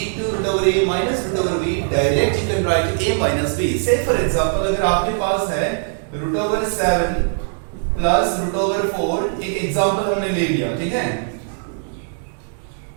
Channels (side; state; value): left; silent; digital silence